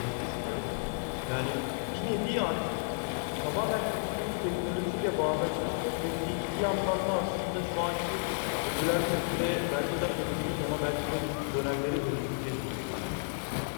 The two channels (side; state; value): right; silent; digital silence